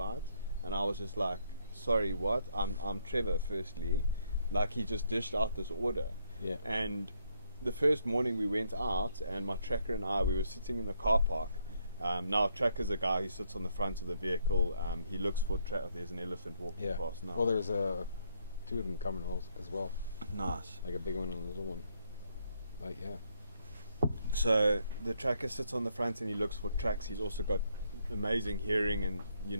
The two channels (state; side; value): inverted; both; correlation -0.73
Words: And I was just like, sorry, what? I'm Trevor, firstly. Like, he just dished out this order. And the first morning we went out, and my tracker and I, we were sitting in the car park. Now, Tracker's a guy who sits on the front of the vehicle. He looks for there's an elephant walking past now. Well, there's 2 of them coming as well. Nice. Like a big one and a little one. Like, So the tracker sits on the front and he looks for tracks. He's also got amazing hearing, and